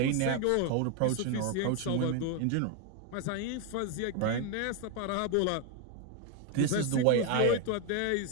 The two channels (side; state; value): both; different; correlation 0.01